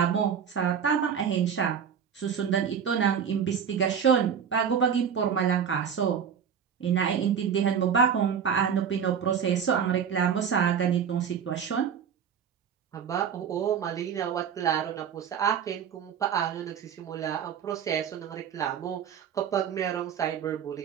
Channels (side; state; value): left; quieter; 7.7 dB